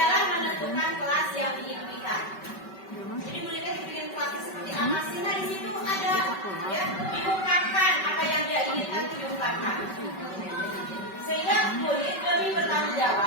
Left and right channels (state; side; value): late; right; 5.2 ms